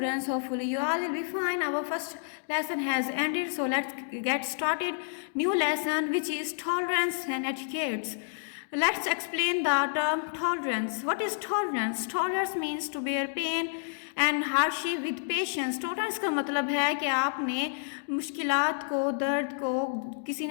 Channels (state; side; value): silent; right; digital silence